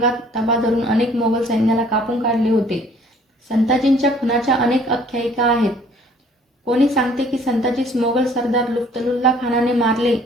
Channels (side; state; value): both; normal; correlation 0.57